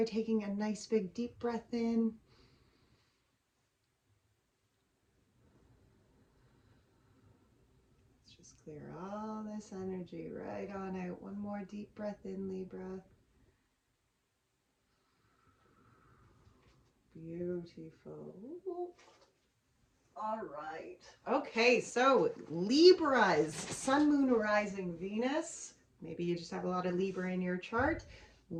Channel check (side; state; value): both; identical; correlation 1.00